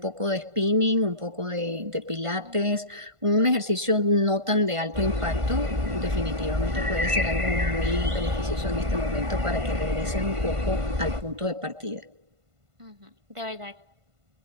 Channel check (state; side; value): late; left; 1.5 ms